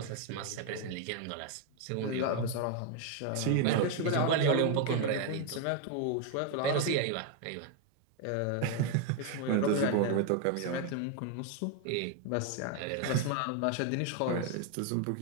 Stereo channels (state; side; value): different; both; correlation 0.01